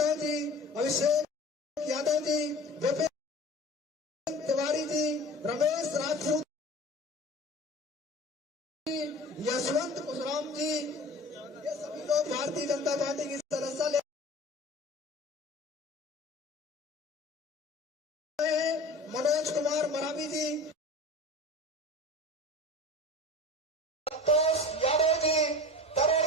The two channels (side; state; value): both; normal; correlation 0.38